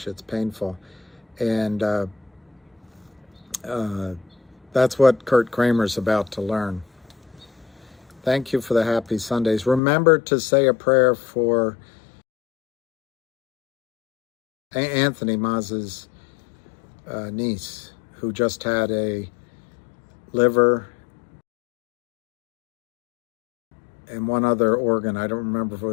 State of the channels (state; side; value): drops out; right; at 9.8 s